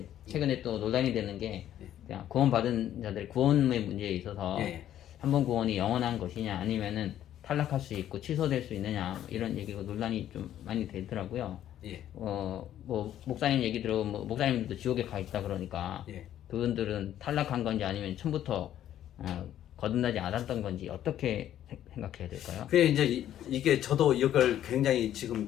최근에 또 논란이 되는 게 그냥 구원받은 자들 구원의 문제에 있어서 한 번 구원이 영원한 것이냐 아니면은 탈락할 수 있고 취소될 수 있느냐 이런 얘기가 논란이 좀 많이 되더라고요. 뭐 목사님 얘기 들어보면 뭐 목사님들도 지옥에 가 있다 그러니까 그분들은 탈락한 건지 아니면 처음부터 거듭나지 않았던 건지 어떻게 생각해야 될까요? 그게 이제 이게 저도 이걸 굉장히 지금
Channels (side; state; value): right; quieter; 11.5 dB